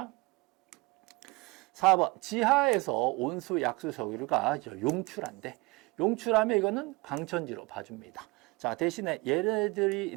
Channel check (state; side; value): quieter; left; 24.5 dB